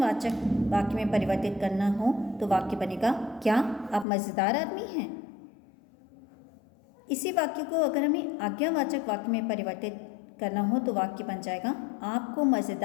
वाक्य में परिवर्तित करना हो तो वाक्य बनेगा क्या आप मज़ेदार आदमी हैं। इसी वाक्य को अगर हमें आज्ञावाचक वाक्य में परिवर्तित करना हो तो वाक्य बन जाएगा आपको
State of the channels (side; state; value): right; drops out; at 4.0 s